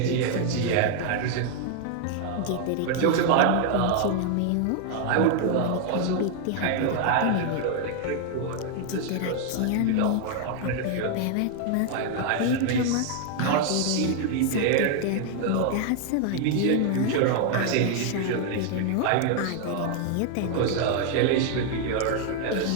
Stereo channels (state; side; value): different; both; correlation 0.00